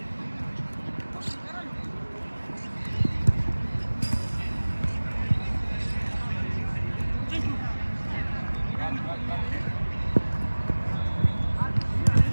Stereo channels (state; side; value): inverted; both; correlation -1.00